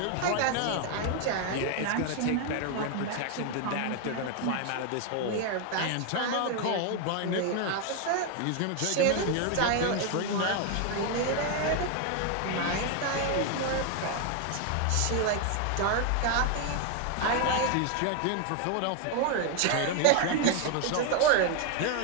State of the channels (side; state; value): both; different; correlation 0.01